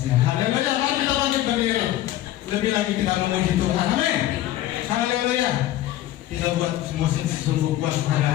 Haleluya. Mari kita bangkit berdiri. Lebih lagi kita memuji Tuhan. Amin. Haleluya. Kita buat musim sungguh kuat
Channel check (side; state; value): right; quieter; 14.1 dB